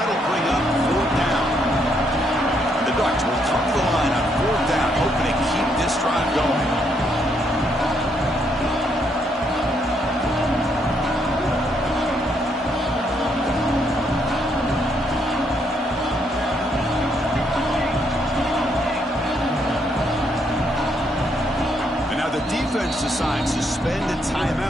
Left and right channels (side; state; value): both; normal; correlation 0.74